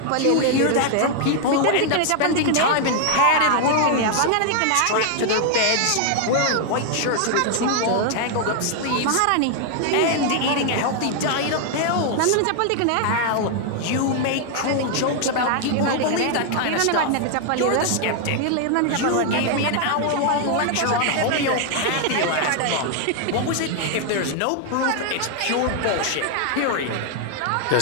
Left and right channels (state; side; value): different; both; correlation 0.00